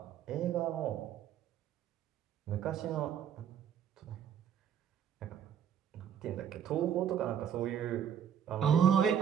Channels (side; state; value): left; quieter; 8.8 dB